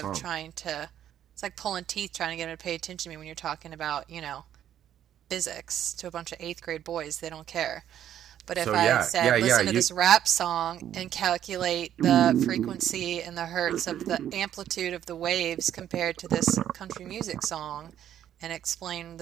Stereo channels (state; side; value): quieter; left; 10.7 dB